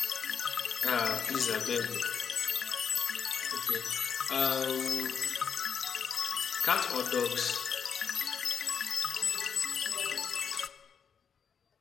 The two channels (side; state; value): right; quieter; 6.9 dB